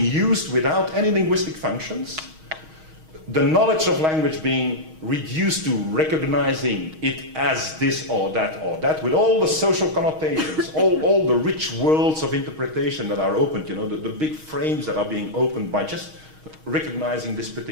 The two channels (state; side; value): late; left; 6.4 ms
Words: used without any linguistic functions. The knowledge of language being reduced to recognizing it as this or that, with all the social connotations, all the rich worlds of interpretation that are opened, you know, the big frames that are being opened by just recognizing this